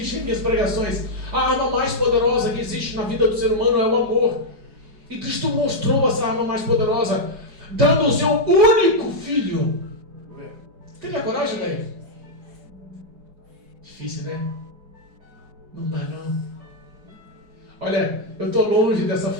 em minhas pregações. A arma mais poderosa que existe na vida do ser humano é o amor. E Cristo mostrou essa arma mais poderosa, dando o seu único filho. Teria coragem, velho? Difícil, né? Não dá, não. Olha, eu estou longe dessa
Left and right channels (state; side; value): late; left; 4.8 ms